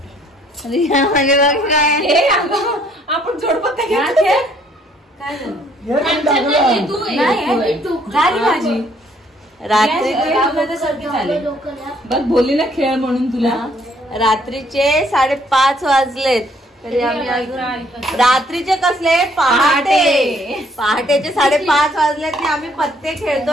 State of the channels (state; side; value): normal; both; correlation 0.64